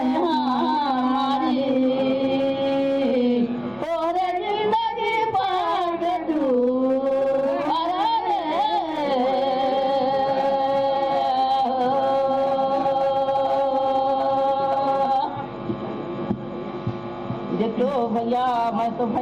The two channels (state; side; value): noise; right; hum, 26 dB below the sound